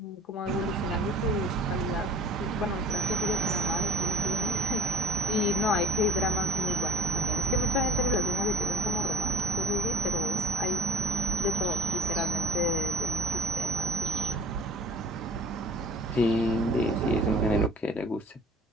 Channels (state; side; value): normal; both; correlation 0.48